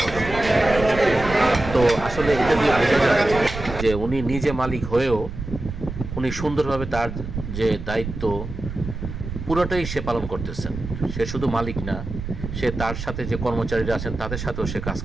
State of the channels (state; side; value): noise; right; rumble, 8 dB below the sound